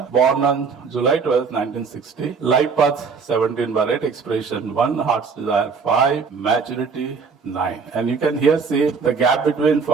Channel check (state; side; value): quieter; left; 5.3 dB